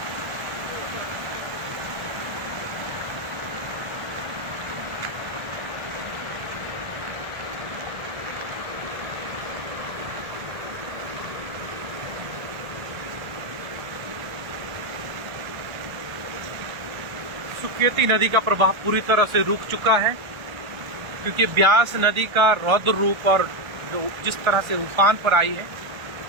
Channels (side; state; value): left; late; 1.4 ms